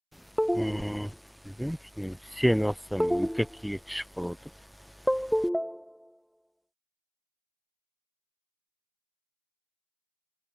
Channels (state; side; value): identical; both; correlation 1.00